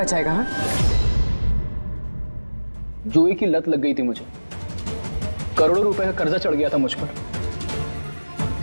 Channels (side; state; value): both; inverted; correlation -1.00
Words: हाँ? जुए की लत लग गई थी मुझे, करोड़ों रुपए का कर्जा चढ़ गया था मुझ पर।